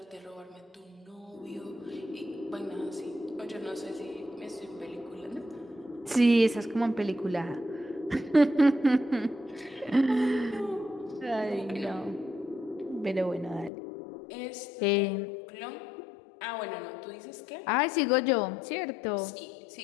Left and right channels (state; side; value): drops out; right; at 13.7 s